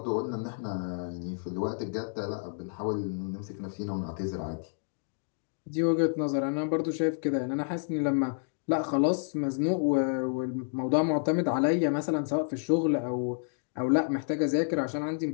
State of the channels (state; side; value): silent; right; digital silence